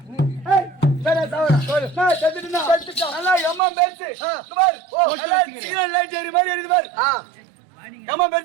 ஏய் சரி சாவறேன். நான் செத்துட்டேனா? செத்துட்டேன். நல்லா எம்மா பேச்சு. பார். ஓ எல்லாம் சிக்னல் லைட் ஏறி மாதிரி இருக்குது பார். எம்மா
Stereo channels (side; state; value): left; drops out; at 3.6 s